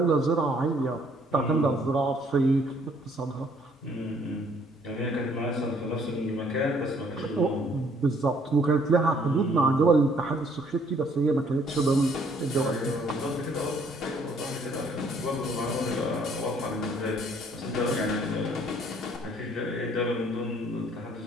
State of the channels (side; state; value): both; normal; correlation 0.62